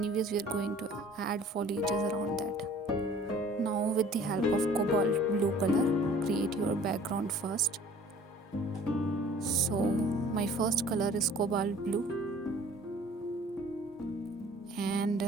we are going to add foliages around that. Now with the help of cobalt blue color, create your background first. So my first color is cobalt blue, and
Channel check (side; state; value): both; normal; correlation 0.51